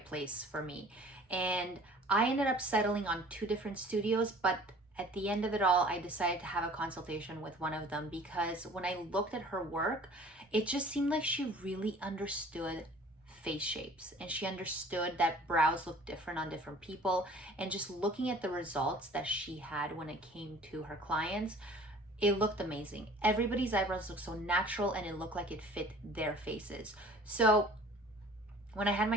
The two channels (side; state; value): both; normal; correlation 0.49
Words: place for me. And I ended up settling on 2 different studios, but at the end of it all, I decided to have a consultation with one of them because when I looked at her work, it just seemed like she really understood face shapes, and she understood that brows look different on different people. And just looking at the results that she had when it came to her clients, it looked amazing. Everybody's eyebrows looked so natural, and it looked like it fit their faces. So when I had